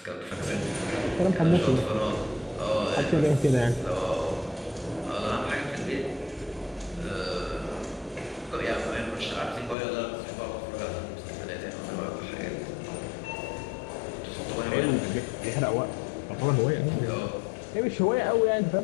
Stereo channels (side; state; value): right; drops out; at 9.8 s